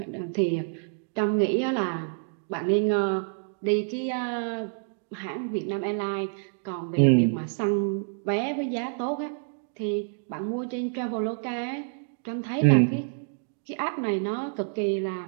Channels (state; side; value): silent; left; 59 dB below the other